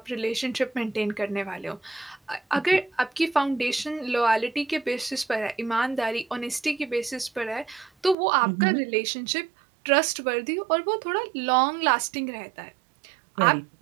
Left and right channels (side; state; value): left; drops out; at 8.2 s